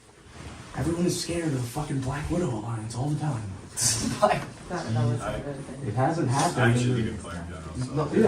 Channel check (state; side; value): identical; both; correlation 1.00